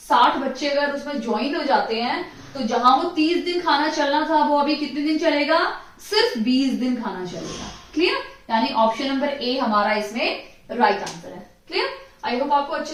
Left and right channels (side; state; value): both; identical; correlation 1.00